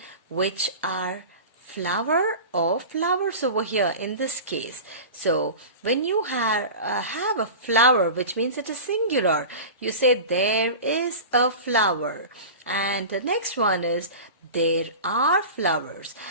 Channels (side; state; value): both; inverted; correlation -0.32